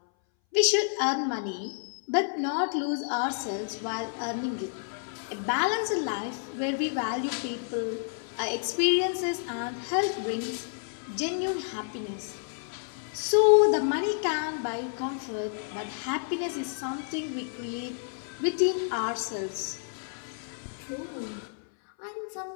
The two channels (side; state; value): right; silent; 58 dB below the other